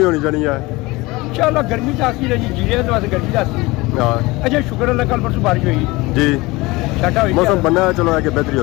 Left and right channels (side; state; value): right; quieter; 22.0 dB